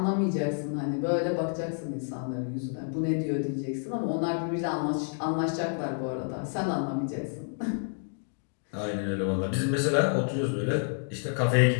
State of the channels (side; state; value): right; silent; 58 dB below the other